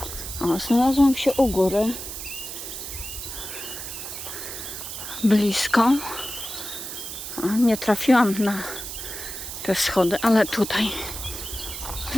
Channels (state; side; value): noise; right; hiss, 8 dB below the sound